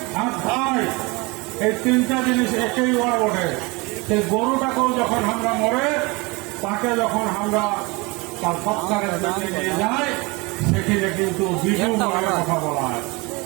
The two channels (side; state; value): left; quieter; 25.9 dB